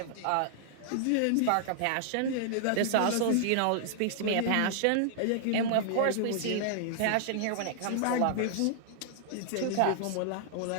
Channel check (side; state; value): both; different; correlation -0.01